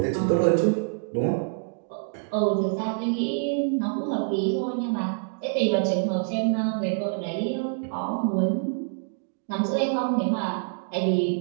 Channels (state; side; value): silent; left; digital silence